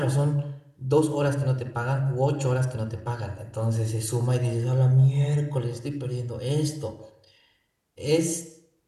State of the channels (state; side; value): identical; both; correlation 1.00